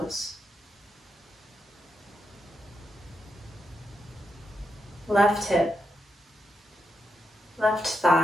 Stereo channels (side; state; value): both; normal; correlation 0.84